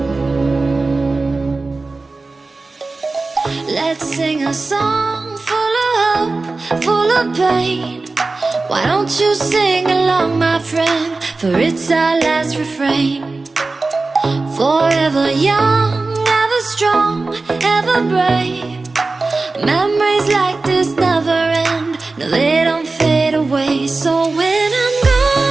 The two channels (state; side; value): quieter; left; 3.6 dB